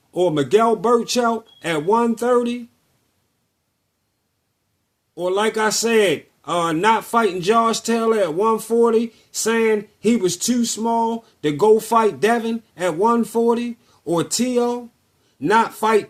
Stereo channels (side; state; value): both; identical; correlation 1.00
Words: or Miguel Burchell at 130? Or like I said, not fighting Josh Taylor at 140, saying he was too small to go fight Devin at 140? Or T.O., not fight